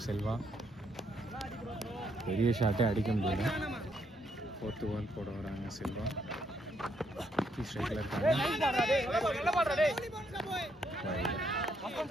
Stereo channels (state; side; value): normal; both; correlation 0.74